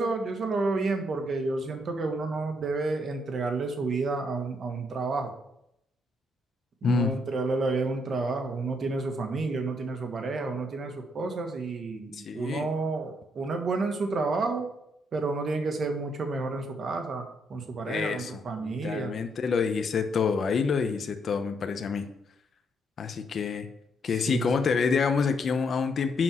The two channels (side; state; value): both; normal; correlation 0.74